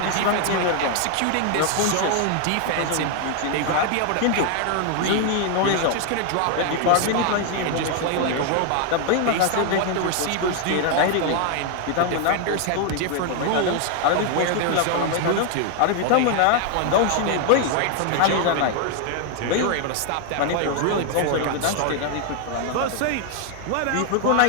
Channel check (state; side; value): different; both; correlation 0.00